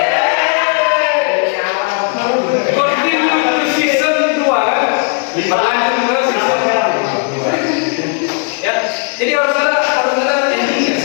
Berlanjut ke season ya, jadi harus ada endingnya.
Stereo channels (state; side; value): quieter; right; 39.9 dB